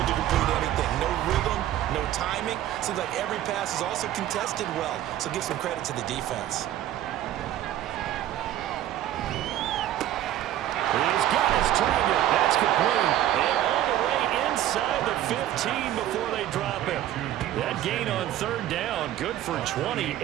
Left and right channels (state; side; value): quieter; left; 12.7 dB